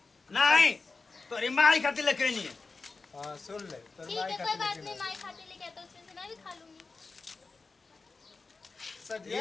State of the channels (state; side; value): quieter; right; 4.1 dB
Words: नहीं तोरी माई खातिर लेके नहीं है हां सुन ले ठीक है कोई बात नहीं माई खाते लेके आता उसमें से मैं भी खा लूंगी।